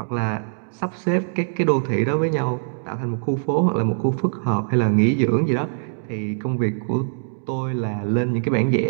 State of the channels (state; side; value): silent; left; digital silence